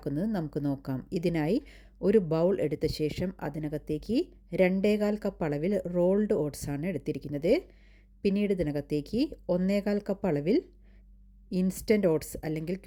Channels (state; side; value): identical; both; correlation 1.00